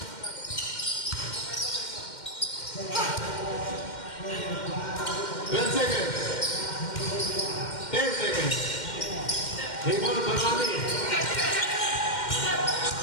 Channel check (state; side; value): late; right; 2.1 ms